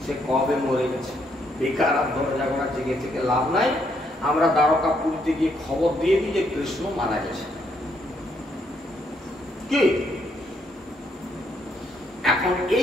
সে কবে মরে গেছে, বেকার আর দরজা ঘোড়া জেগে থেকে লাভ নাই, আমরা দ্বারকাপুরীতে গিয়ে খবর দিয়ে দিই যে কৃষ্ণ মারা গেছে। কি এখন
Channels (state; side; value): normal; both; correlation 0.73